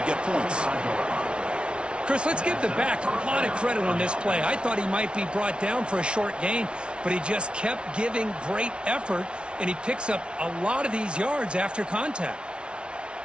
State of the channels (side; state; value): left; late; 0.058 ms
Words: get points. Chris, let's give the back a lot of credit on this play. I thought he might be brought down for a short gain, but he just kept giving great effort, and he picks up a lot of these yards after contact.